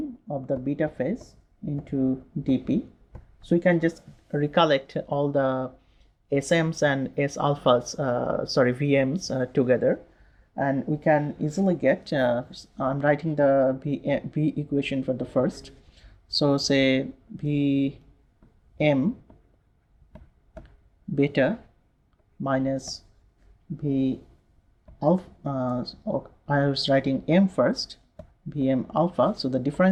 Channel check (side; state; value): both; identical; correlation 1.00